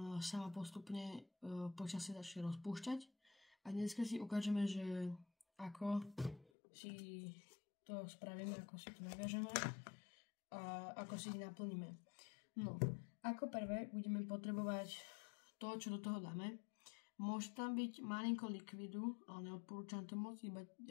sama postupne počasie začne rozpúšťať. A dneska si ukážeme, že ako si to spravíme, ako si to naviažeme a ako si ich naplníme. No, ako prvé budeme potrebovať to, čo do toho dáme. Môže tam byť malinko likvidu, ale neodporúčam to moc, iba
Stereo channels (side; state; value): right; drops out; at 6.5 s